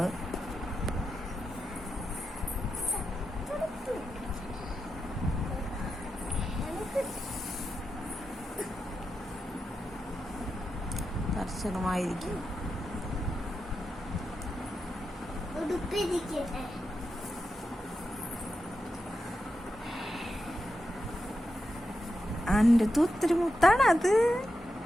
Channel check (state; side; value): normal; both; correlation 0.88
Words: കർശനമായിരിക്കും. അന്റെ ഒത്തിരി മുത്താണ് അത്.